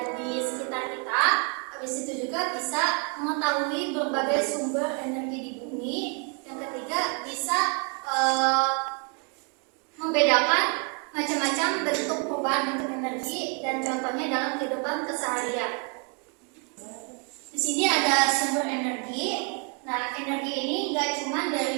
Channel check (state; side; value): quieter; left; 37.7 dB